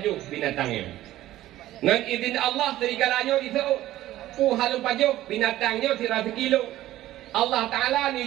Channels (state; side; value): quieter; left; 14.7 dB